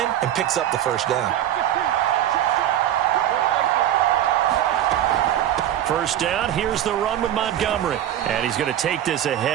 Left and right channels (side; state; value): left; quieter; 11.5 dB